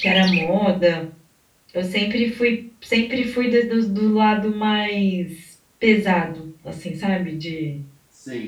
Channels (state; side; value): identical; both; correlation 1.00